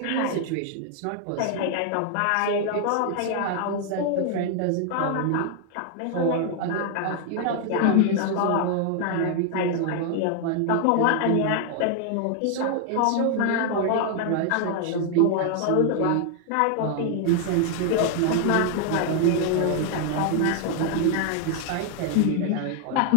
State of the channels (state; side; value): different; both; correlation 0.00